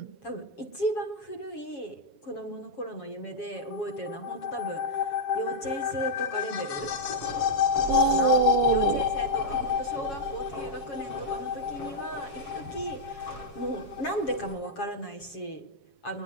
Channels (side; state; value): right; late; 7.3 ms